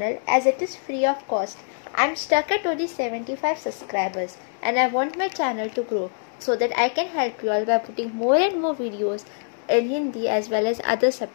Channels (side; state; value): right; silent; digital silence